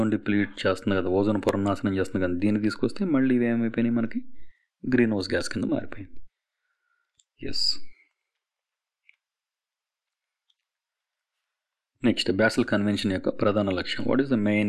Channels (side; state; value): both; identical; correlation 1.00